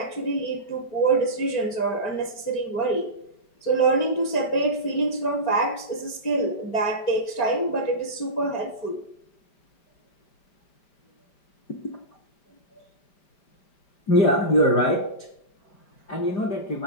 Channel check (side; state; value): right; late; 5.1 ms